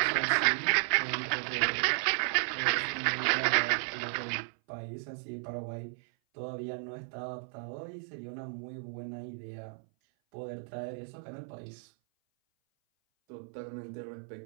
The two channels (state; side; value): silent; left; 55 dB below the other